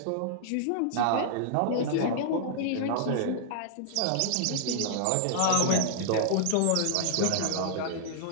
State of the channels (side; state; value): both; different; correlation -0.01